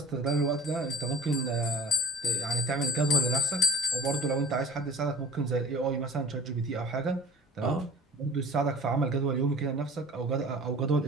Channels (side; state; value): both; normal; correlation 0.40